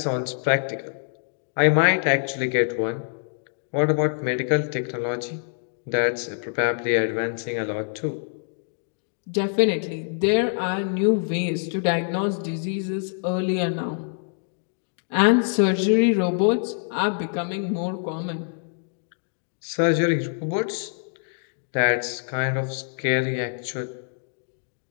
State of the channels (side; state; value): right; silent; digital silence